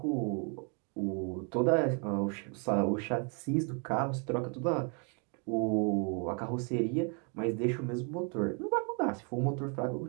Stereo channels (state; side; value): quieter; left; 36.9 dB